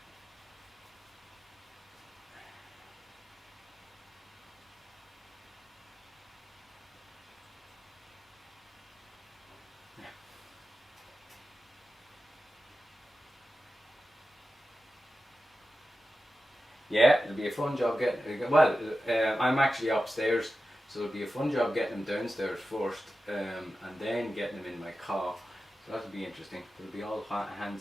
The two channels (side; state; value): both; normal; correlation 0.93